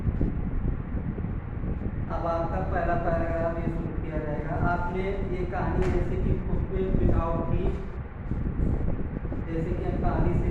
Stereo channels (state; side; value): identical; both; correlation 1.00